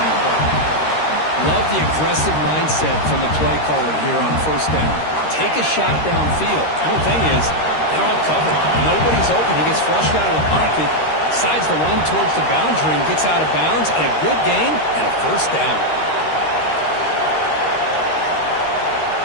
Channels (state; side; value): late; right; 13 ms